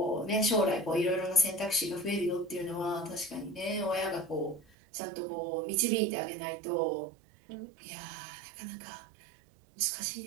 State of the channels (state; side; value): drops out; left; at 4.6 s